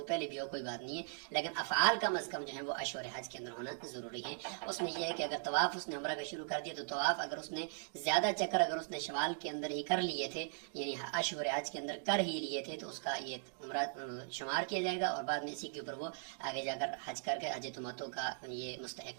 پہلے بھی ہو کوئی بات نہیں ہے، لیکن افعال کم از کم جو ہیں وہ اشہر حج کے اندر ہونا ضروری ہے. اس میں یہ ہے کہ اگر طواف اس نے عمرہ کا شروع کر دیا تو طواف اگر اس نے زیادہ چکر اگر اس نے شوال کے اندر ہی کر لیے تھے، یعنی اشہر حج کے اندر کر ہی لیے تھے، تو اس کا یہ عمرہ شمار کیا جائے گا اور بعد میں اسی کے اوپر وہ آگے جا کر حج کر کے حج تمتع کا یہ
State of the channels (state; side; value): silent; left; digital silence